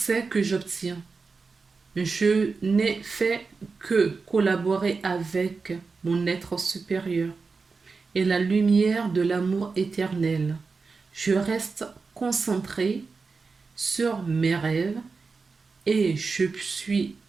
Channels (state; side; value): quieter; left; 4.5 dB